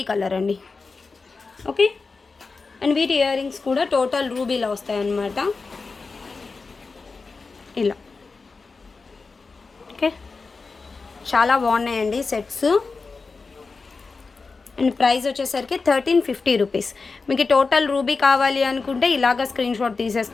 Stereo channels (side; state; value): right; quieter; 4.3 dB